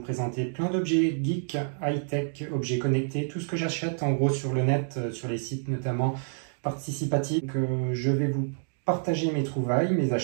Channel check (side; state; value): left; silent; digital silence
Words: plein d'objets geek, high-tech, objets connectés, tout ce que j'achète en gros sur le net, sur les sites notamment participatifs. Je vais vous partager mes trouvailles, mes